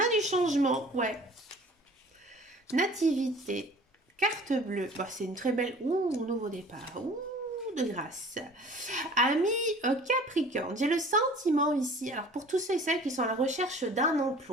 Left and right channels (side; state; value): both; normal; correlation 0.47